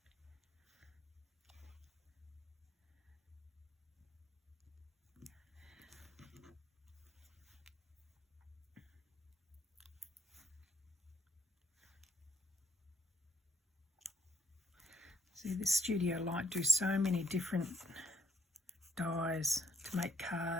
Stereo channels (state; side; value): normal; both; correlation 0.71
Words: See, this Studio Light do so many different dies to make